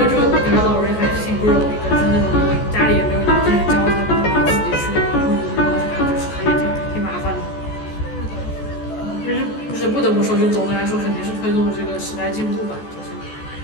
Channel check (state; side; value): late; right; 14 ms